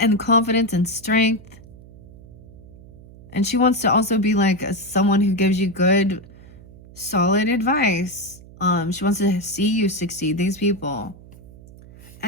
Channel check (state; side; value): noise; right; hum, 20 dB below the sound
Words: confidence and strength. And she wants to also be like someone who gives you good, solid advice. She wants to see you succeed, these people.